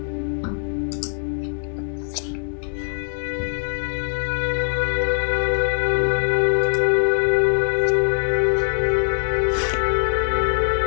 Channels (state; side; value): silent; right; 64 dB below the other